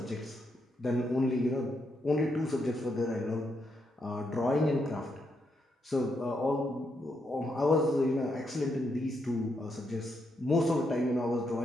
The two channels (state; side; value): normal; both; correlation 0.80